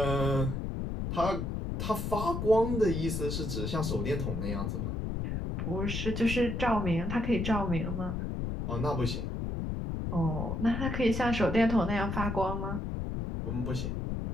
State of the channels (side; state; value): left; noise; rumble, 3 dB below the sound